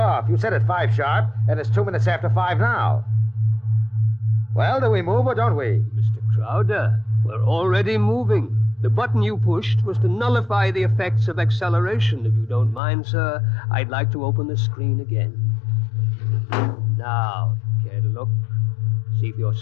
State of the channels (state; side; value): drops out; right; at 12.8 s